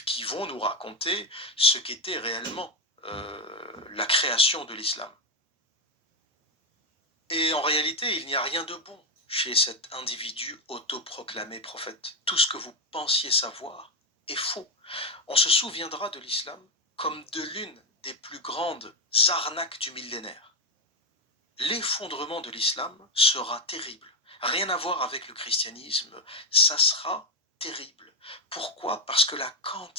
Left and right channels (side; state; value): both; normal; correlation 0.06